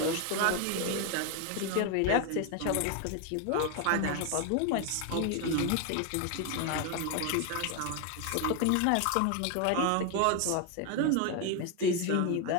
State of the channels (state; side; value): different; both; correlation 0.01